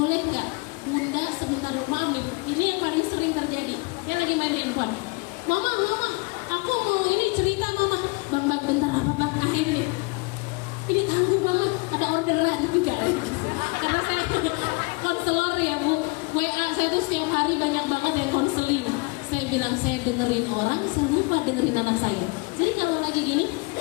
nggak? Bunda sebentar dulu, maaf nih, ini yang paling sering terjadi. Dia lagi main handphone. Mama, aku mau ini cerita Mama. Bang, bentar apa Bang? Ini tangguh Mama, ada orderan juga. Karena saya konselor ya Bu, WA saya tuh setiap hari banyak banget yang konseling. Saya bilang saya dengerin orang, saya lupa dengerin anak saya. Jadi kalau lagi gini,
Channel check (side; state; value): right; quieter; 28.8 dB